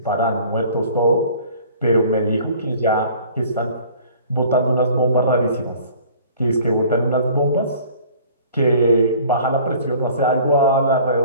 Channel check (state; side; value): inverted; both; correlation -0.50